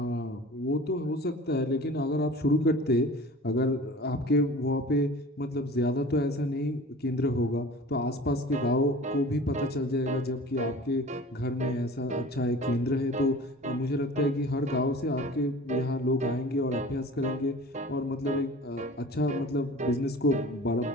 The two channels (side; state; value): both; normal; correlation 0.42